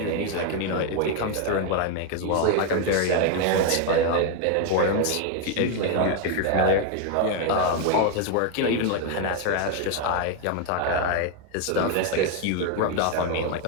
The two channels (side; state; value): both; different; correlation 0.01